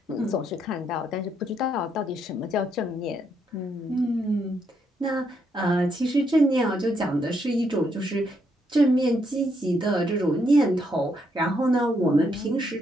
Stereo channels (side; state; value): both; normal; correlation 0.76